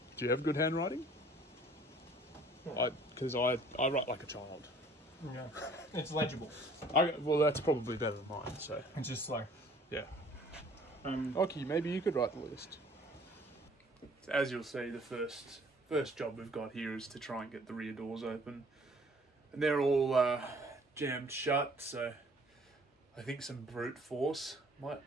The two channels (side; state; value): both; normal; correlation 0.55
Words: Do you have good handwriting? Because I write like a child. Yeah, it's legible. Well, that's probably better than mine. So It's just like yeah. Okay, maybe you could write the list. As you'll see, the first job we've got here is to try and get the rear doors open, and they're all jammed shut. So I think some brute force might